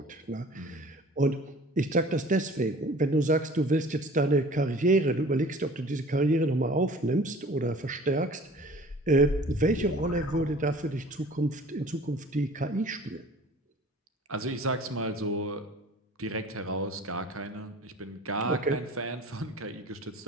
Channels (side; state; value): both; normal; correlation 0.46